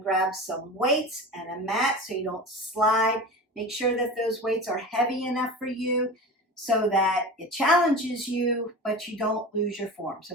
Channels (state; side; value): normal; both; correlation 0.31